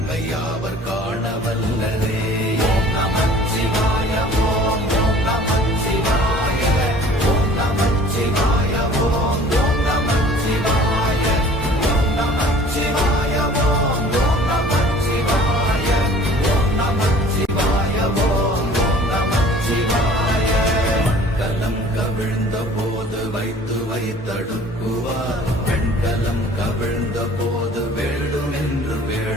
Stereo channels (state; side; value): normal; both; correlation 0.49